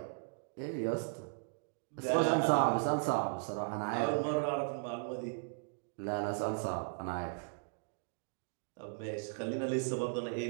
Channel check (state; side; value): silent; left; digital silence